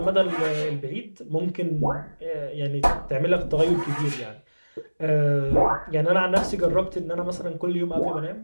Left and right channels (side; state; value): both; inverted; correlation -1.00